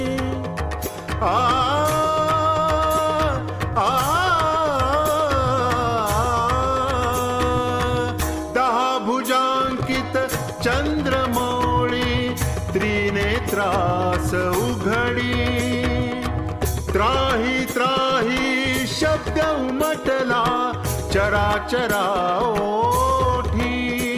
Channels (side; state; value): both; identical; correlation 1.00